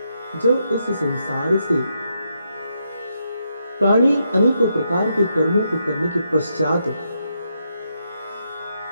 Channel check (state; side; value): inverted; both; correlation -0.81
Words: जब इस संसार से प्राणी अनेकों प्रकार के कर्मों को करने के पश्चात